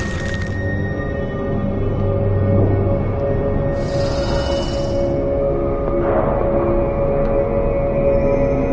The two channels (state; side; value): identical; both; correlation 1.00